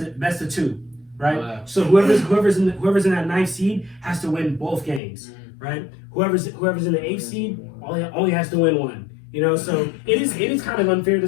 2, right? Wow. So whoever's in that 9th seed has to win both games, right? Whoever's in the 8th seed only has to win 1. You know, so it is kind of unfair to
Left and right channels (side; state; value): right; drops out; at 5.0 s